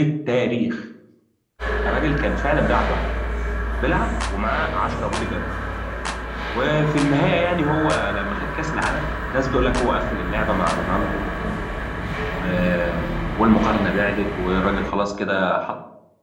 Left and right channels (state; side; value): identical; both; correlation 1.00